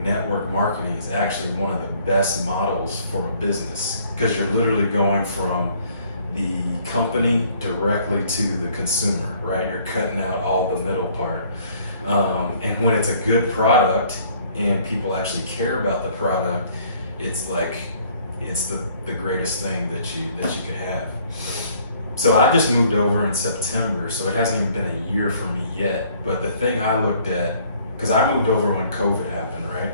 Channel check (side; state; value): both; inverted; correlation -0.60